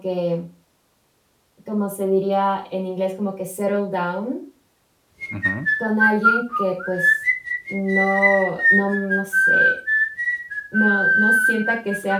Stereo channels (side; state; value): both; identical; correlation 1.00